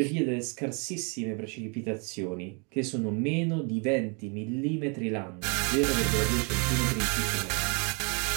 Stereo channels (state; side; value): quieter; left; 34.9 dB